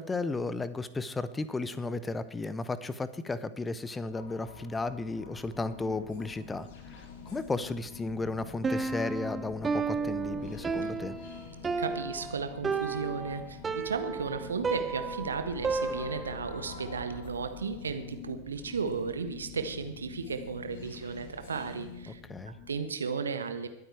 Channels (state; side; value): normal; both; correlation 0.32